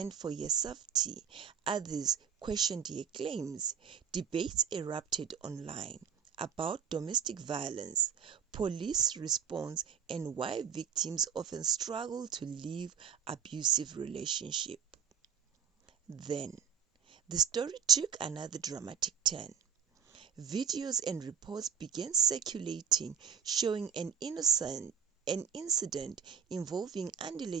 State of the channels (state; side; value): quieter; left; 7.6 dB